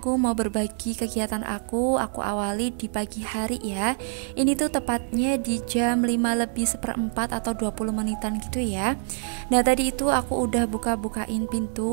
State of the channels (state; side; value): silent; left; digital silence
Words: mau berbagi kegiatan aku awali di pagi hari ya. Ini tuh tepatnya di jam 5 lebih seperempat atau 20 menitan gitu ya. Nah, tadi itu aku udah buka-bukain